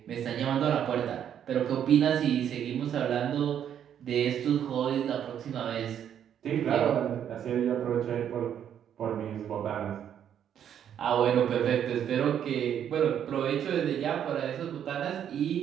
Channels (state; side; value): quieter; left; 9.4 dB